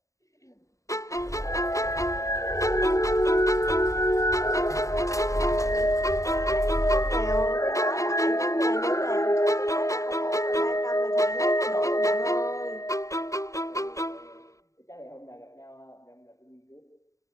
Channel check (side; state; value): right; late; 0.16 ms